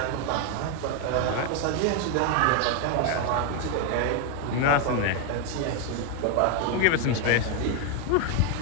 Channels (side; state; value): both; different; correlation 0.01